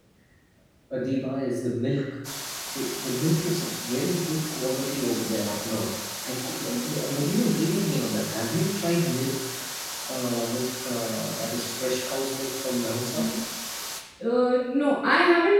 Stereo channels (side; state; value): both; identical; correlation 1.00